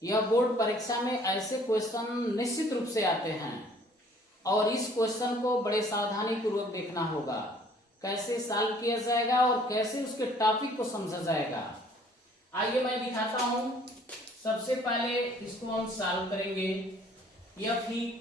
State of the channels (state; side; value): normal; both; correlation 0.57